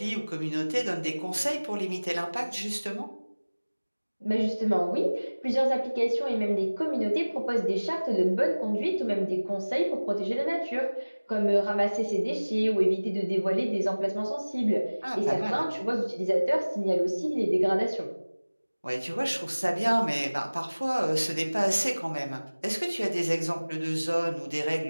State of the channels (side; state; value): both; inverted; correlation -1.00